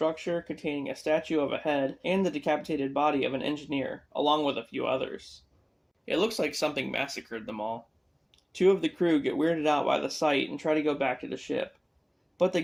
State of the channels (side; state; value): both; identical; correlation 1.00